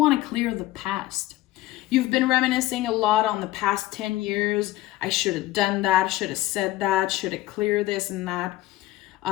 to clear the past. You've been reminiscing a lot on the past 10 years. I should have done that, should have said that, should have cleared this and that.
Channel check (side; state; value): right; quieter; 16.6 dB